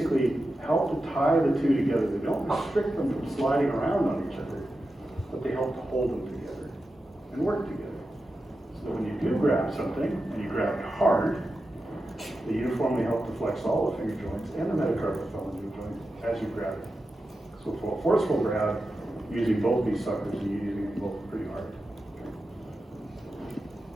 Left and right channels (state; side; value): normal; both; correlation 0.91